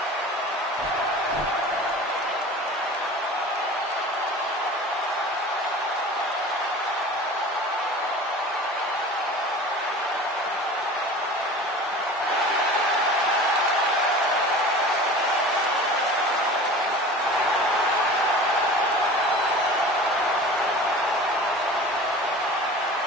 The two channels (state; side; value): normal; both; correlation 0.38